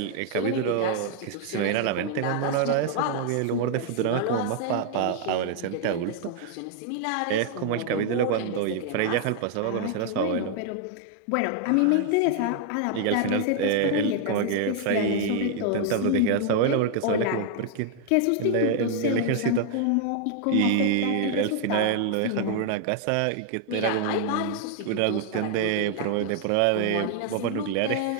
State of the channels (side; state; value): both; different; correlation 0.00